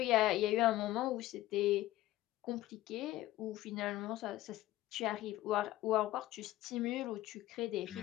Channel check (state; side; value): quieter; right; 15.7 dB